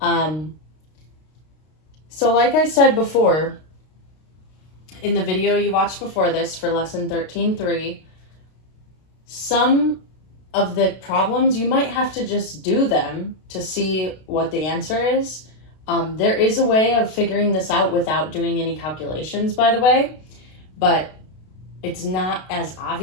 So like I said before, in the video you watched before this for lesson 13.3, some of the problems you might have to just do them to see what the answer is. There is a way of figuring this out without doing any calculations, by the way, but it's not as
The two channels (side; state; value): right; late; 32 ms